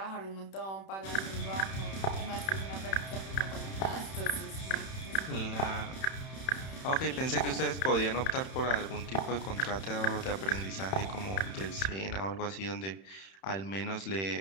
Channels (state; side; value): late; right; 31 ms